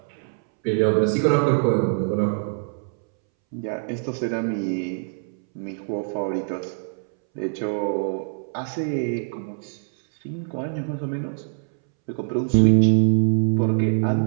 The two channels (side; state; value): left; silent; 63 dB below the other